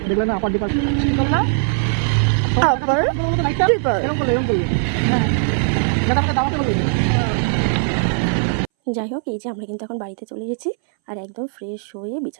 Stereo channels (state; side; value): silent; left; 63 dB below the other